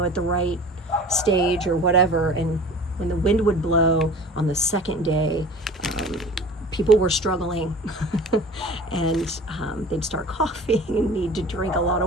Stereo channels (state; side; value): normal; both; correlation 0.41